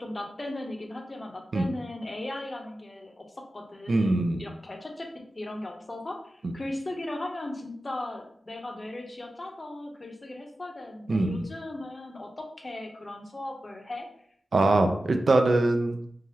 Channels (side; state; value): both; normal; correlation 0.94